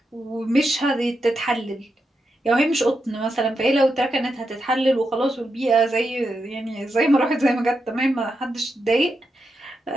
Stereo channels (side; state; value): both; normal; correlation 0.86